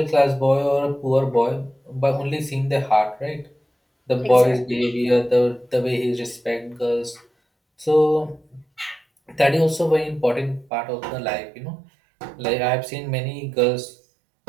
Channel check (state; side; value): drops out; left; at 10.7 s